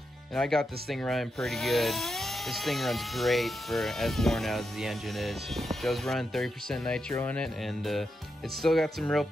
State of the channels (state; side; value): normal; both; correlation 0.85